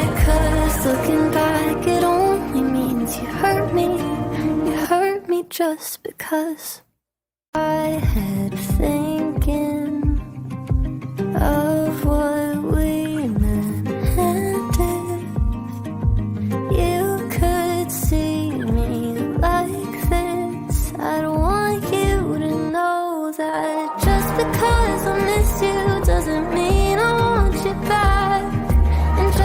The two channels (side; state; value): both; identical; correlation 1.00